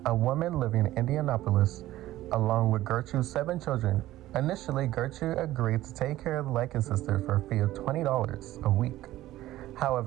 a woman living in Indianapolis, along with Gertrude's 7 children. Initially, Gertrude agreed to take care of the Likens sister for a fee of $20 a week.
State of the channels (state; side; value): quieter; left; 15.3 dB